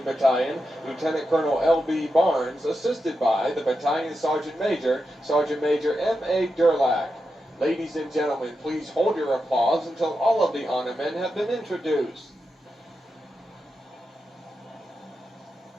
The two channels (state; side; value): normal; both; correlation 0.88